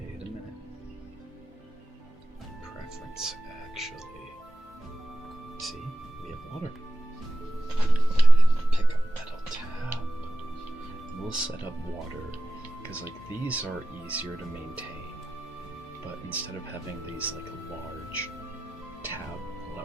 Wait a minute. Preference, actually. See, we have water. set up water, because like these are easier to maintain, but instead of having these like large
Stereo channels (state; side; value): normal; both; correlation 0.93